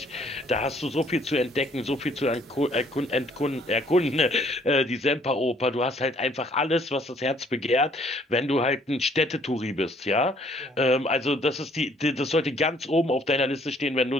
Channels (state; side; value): normal; both; correlation 0.62